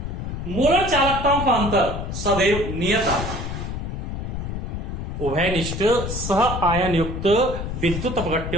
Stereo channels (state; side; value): noise; left; rumble, 5 dB below the sound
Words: मोलर चालकताओं का अंतर सदैव नियत आता है। उभयनिष्ठ सह आयन युक्त विद्युत